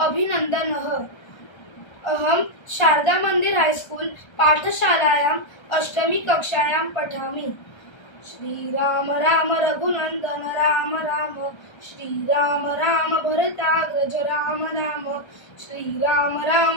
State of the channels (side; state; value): right; late; 1.3 ms